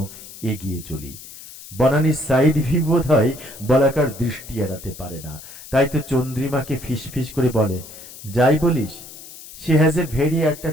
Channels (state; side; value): noise; left; hiss, 16 dB below the sound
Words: এগিয়ে চলি। বনানীর সাইড ভিউ বোধ হয় বলাকার দৃষ্টি এড়াতে পারে না, তাই তো চন্দ্রিমাকে ফিসফিস করে বলে, যাই বলিস, she has a very